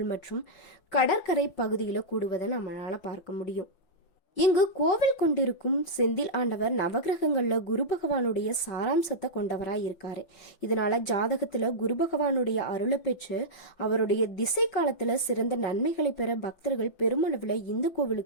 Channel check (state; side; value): late; right; 5.7 ms